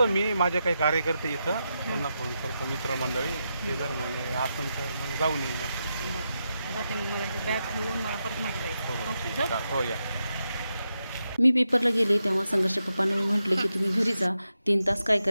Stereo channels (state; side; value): inverted; both; correlation -0.87